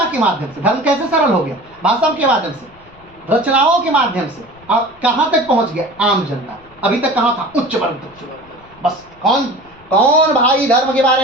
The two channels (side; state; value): left; noise; rumble, 27 dB below the sound